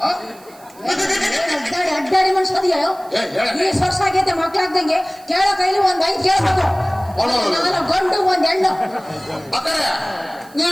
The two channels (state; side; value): noise; right; hiss, 25 dB below the sound